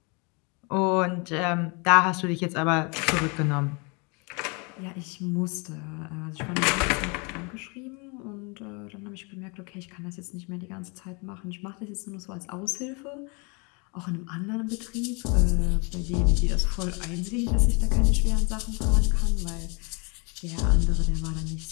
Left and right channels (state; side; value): quieter; right; 31.9 dB